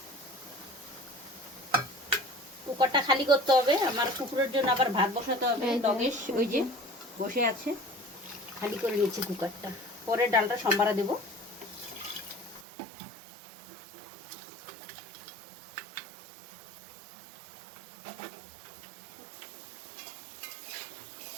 কুকারটা খালি করতে হবে, আমার কুকুরের জন্য আবার ভাত বসাতে হবে। লগেশ ওই যে বসে আছে, খালি করে নিচ্ছি কুকারটা, পরে ডালটা সম্বারা দেব।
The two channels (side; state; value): left; drops out; at 12.7 s